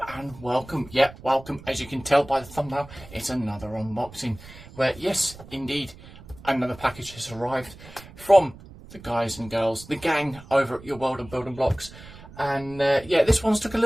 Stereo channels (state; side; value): noise; right; rumble, 18 dB below the sound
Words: and welcome. Yeah, welcome. As you can tell by the thumbnail, it's another unboxing where, yes, indeed, another package has arrived from the guys and girls, the gang over at Your World of Building Blocks. And yeah, this one's took a